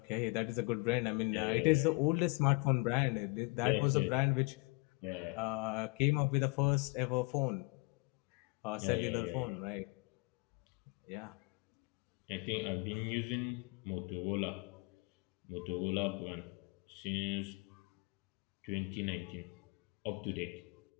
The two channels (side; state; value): right; quieter; 28.5 dB